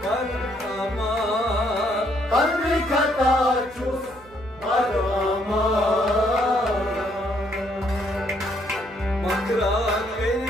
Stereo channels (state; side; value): noise; right; hum, 24 dB below the sound